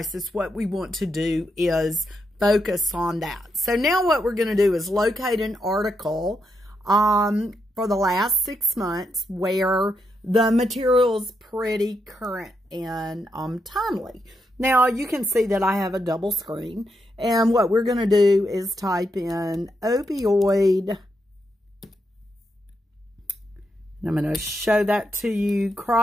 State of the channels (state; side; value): normal; both; correlation 0.82